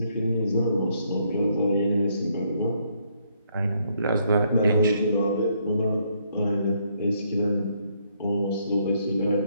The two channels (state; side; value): inverted; both; correlation -0.71